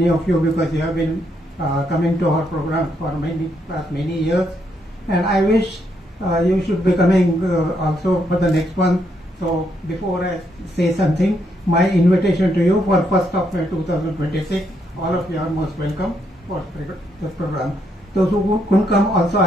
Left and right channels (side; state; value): both; normal; correlation 0.76